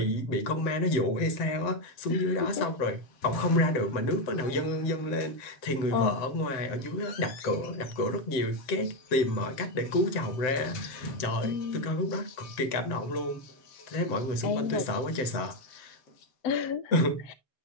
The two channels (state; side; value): late; right; 7.8 ms